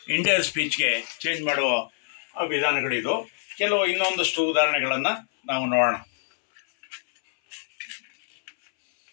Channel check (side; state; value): right; silent; 62 dB below the other